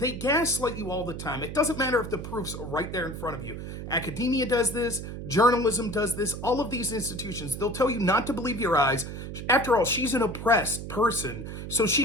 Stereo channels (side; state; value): right; noise; hum, 8 dB below the sound